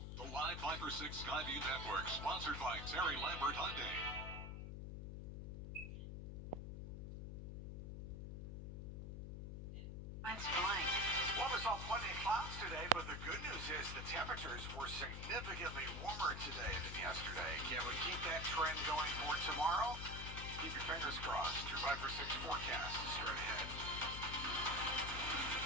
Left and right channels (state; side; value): noise; left; hum, 6 dB below the sound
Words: Live 5 for 6 Skyview Network, sponsored by Terry Lambert Hyundai. Mine's blank. Well, we saw plenty of clouds today, but the good news is the temperatures were significantly warmer today than yesterday. Can we keep that trend going for tomorrow? Keep your fingers crossed. Your 5 for 6 forecast is straight ahead.